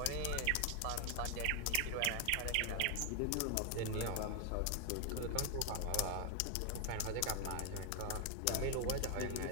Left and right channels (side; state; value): both; different; correlation 0.00